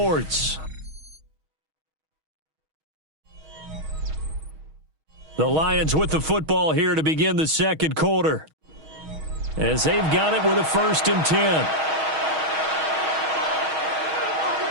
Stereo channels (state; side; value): late; left; 6.3 ms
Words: The Lions with the football here to begin the second quarter, as they've got it with a 1st and 10.